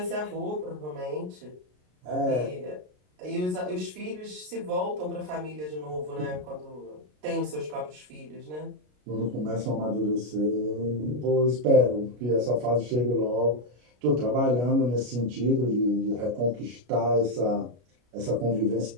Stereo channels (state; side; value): late; left; 33 ms